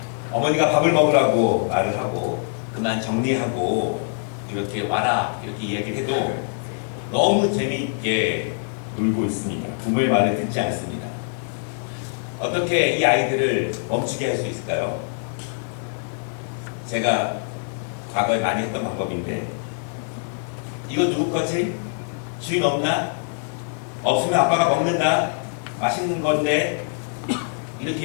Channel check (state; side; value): silent; right; 63 dB below the other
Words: 어머니가 밥을 먹으라고 말을 하고 그만 정리하고 이렇게 와라 이렇게 이야기를 해도 너무 재미있게 놀고 있습니다. 부모의 말을 듣지 않습니다. 어떻게 이 아이들을 멈추게 할 수 있을까요? 제가 과거에 많이 했던 방법인데, 이거 누구 거지? 주인 없나? 없으면 아빠가 먹는다. 맛있는 건데.